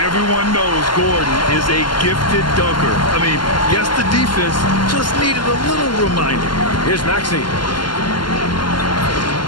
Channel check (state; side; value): late; right; 0.71 ms